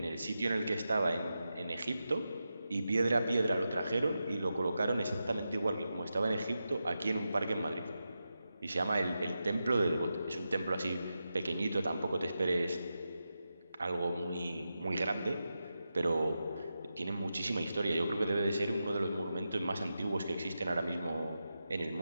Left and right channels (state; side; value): inverted; both; correlation -0.89